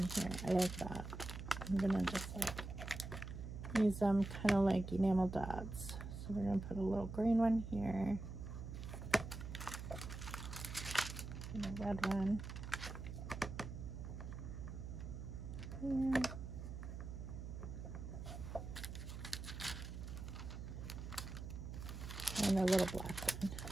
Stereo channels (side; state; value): right; noise; hum, 8 dB below the sound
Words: here. I like that. I'm gonna just like use them kind of like enamel dots. So we're gonna put a little green one here. And a red one here. And a little black one.